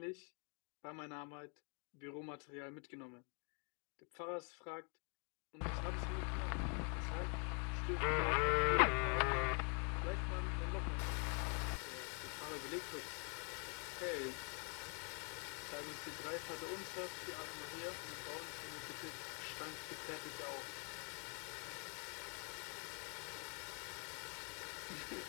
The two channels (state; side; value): quieter; right; 37.1 dB